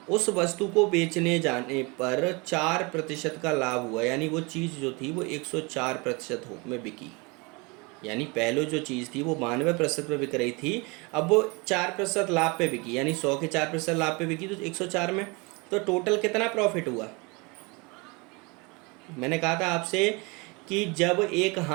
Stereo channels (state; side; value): quieter; left; 28.1 dB